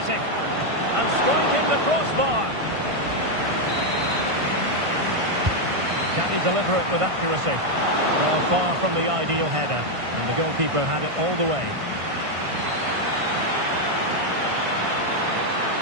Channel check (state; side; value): late; left; 1.5 ms